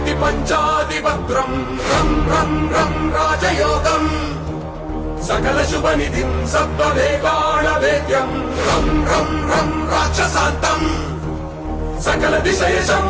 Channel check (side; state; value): both; identical; correlation 1.00